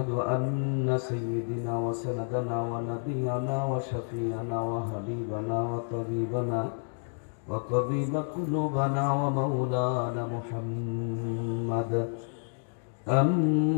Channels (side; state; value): right; silent; digital silence